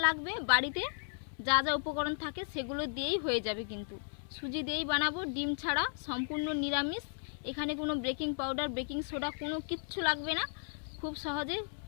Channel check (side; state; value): right; silent; 54 dB below the other